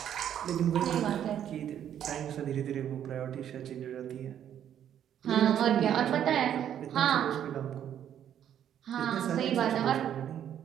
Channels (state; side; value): quieter; left; 10.0 dB